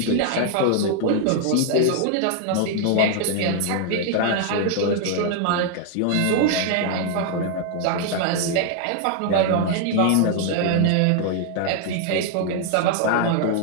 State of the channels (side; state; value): both; different; correlation 0.00